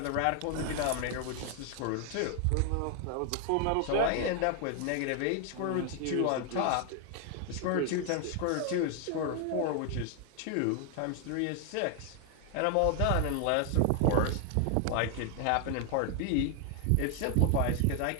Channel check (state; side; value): different; both; correlation 0.00